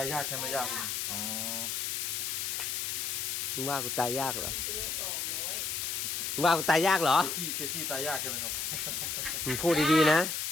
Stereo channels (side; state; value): left; noise; hiss, 1 dB below the sound